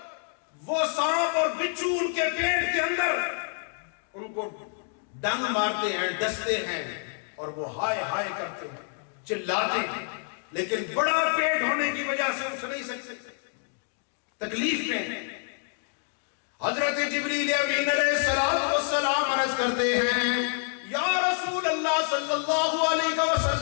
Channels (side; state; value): right; silent; 57 dB below the other